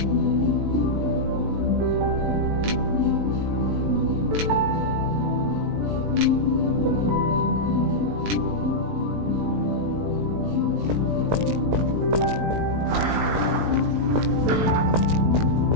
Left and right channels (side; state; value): left; late; 19 ms